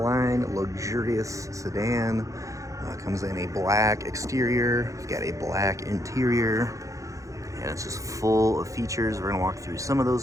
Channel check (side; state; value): left; late; 0.16 ms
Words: luxurious sedan. Comes in a black exterior, we've got a black interior, and it's just full of features. We're going to walk through some of those